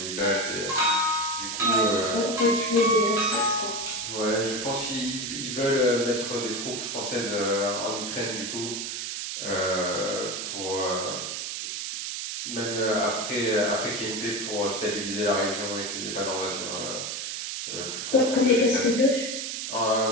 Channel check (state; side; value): noise; right; hiss, 4 dB below the sound